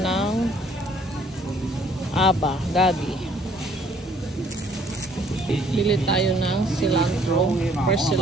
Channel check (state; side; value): normal; both; correlation 0.61